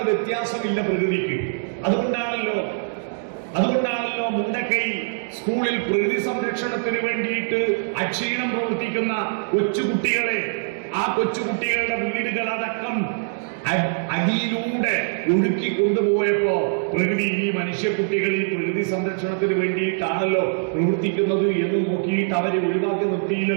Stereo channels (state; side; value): silent; left; digital silence